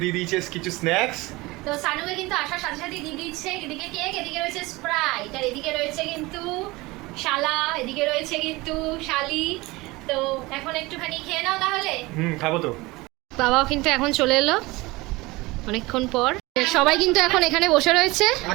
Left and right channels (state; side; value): quieter; left; 21.8 dB